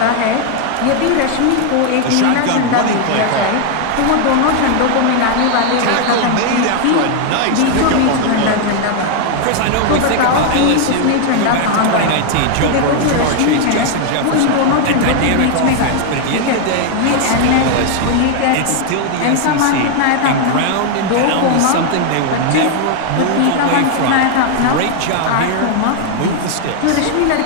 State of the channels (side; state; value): both; different; correlation 0.01